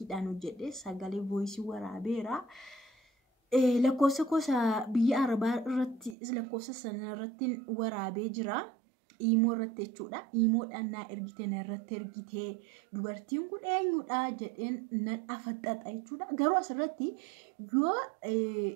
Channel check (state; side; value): drops out; left; at 6.2 s